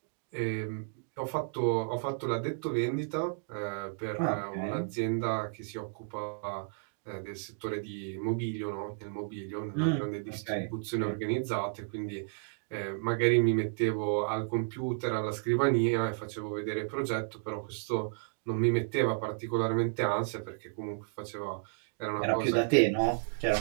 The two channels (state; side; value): silent; left; digital silence